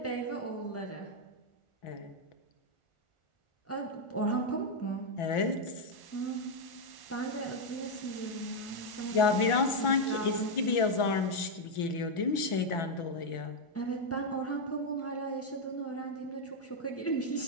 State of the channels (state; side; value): late; right; 1.4 ms